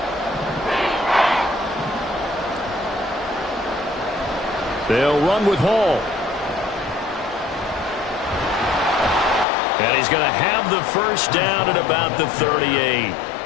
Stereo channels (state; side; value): drops out; right; at 9.5 s